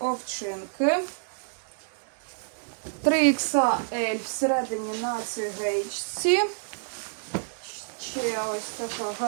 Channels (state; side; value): silent; left; 59 dB below the other